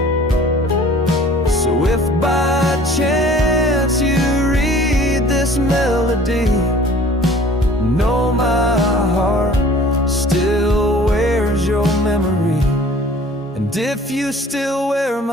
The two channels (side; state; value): both; normal; correlation 0.49